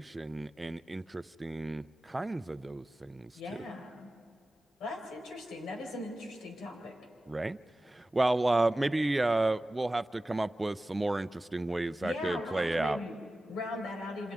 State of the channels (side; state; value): both; normal; correlation 0.95